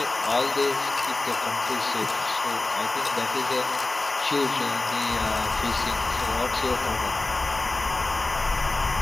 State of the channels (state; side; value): quieter; right; 3.1 dB